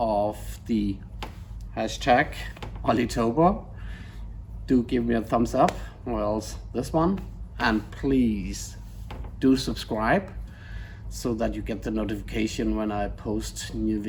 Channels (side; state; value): both; identical; correlation 1.00